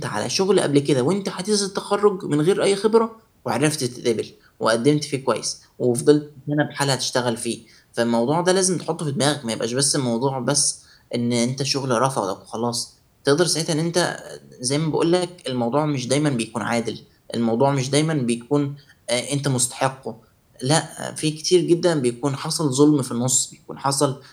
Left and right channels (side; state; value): both; identical; correlation 1.00